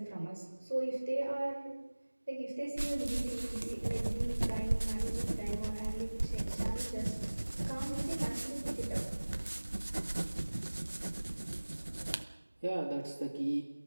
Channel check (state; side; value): inverted; both; correlation -1.00